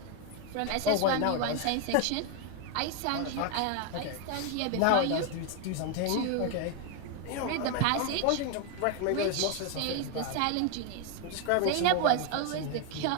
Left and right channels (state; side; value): different; both; correlation 0.01